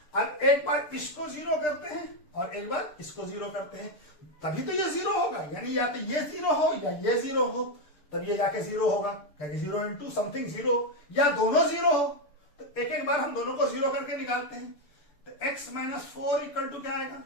अब एक बार इसको 0 करते हैं और एक बार इसको 0 करते हैं, तभी तो ये 0 होगा, यानी या तो ये 0 हो या ये 0 हो, तब ये जाके 0 होगा, क्योंकि 0 इंटू समथिंग 0, या दोनों 0 हो। तो एक बार हम दोनों को 0 करके निकालते हैं। तो x -4 इक्वल टू क्या आएगा,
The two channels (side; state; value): right; late; 6.7 ms